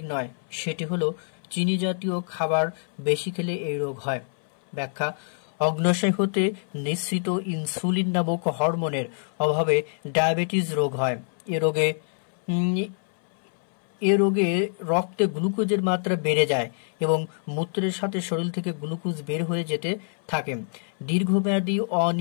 নয় সেটি হলো চিনি জাতীয় খাবার বেশি খেলে এই রোগ হয়। ব্যাখ্যা, অগ্ন্যাশয় হতে নিঃসৃত ইনসুলিন নামক হরমোনের অভাবে ডায়াবেটিস রোগ হয়। এ রোগে রক্তে গ্লুকোজের মাত্রা বেড়ে যায় এবং মূত্রের সাথে শরীর থেকে গ্লুকোজ বের হয়ে যেতে থাকে। দীর্ঘমেয়াদী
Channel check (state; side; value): silent; right; 61 dB below the other